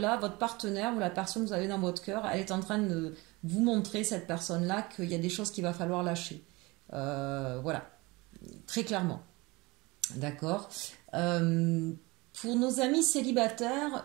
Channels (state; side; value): quieter; left; 23.7 dB